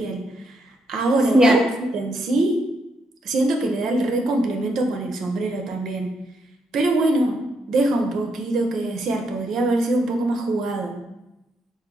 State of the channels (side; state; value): both; normal; correlation 0.78